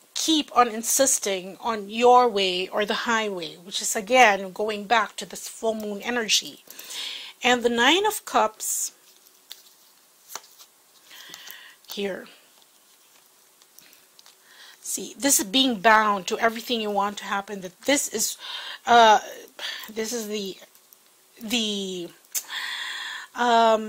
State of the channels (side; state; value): both; identical; correlation 1.00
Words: keep on insisting on your way or the highway, which is again going back to this full moon energy. And the Nine of Cups here. See, this is being bound to everything you want to happen. That this is the